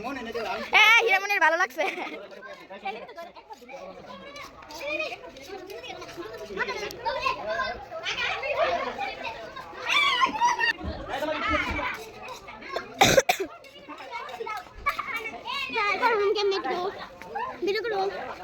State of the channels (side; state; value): both; identical; correlation 1.00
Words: হ্যাঁ হিরামনের ভালো লাগছে।